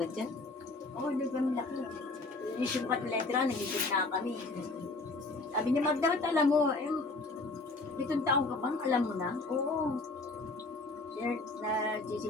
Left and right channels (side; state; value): right; quieter; 3.3 dB